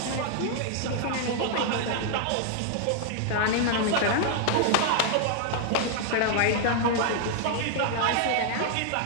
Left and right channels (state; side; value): different; both; correlation 0.00